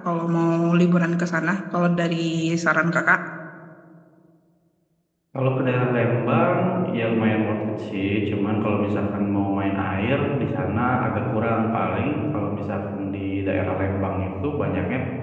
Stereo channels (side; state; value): both; identical; correlation 1.00